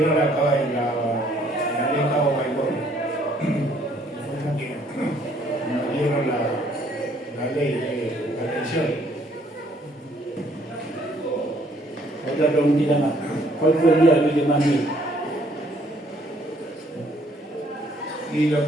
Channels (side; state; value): both; normal; correlation 0.64